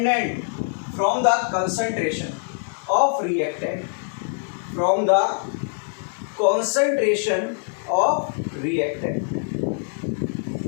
from the concentration of reactant. From the concentration of reactant.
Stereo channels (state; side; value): silent; right; 63 dB below the other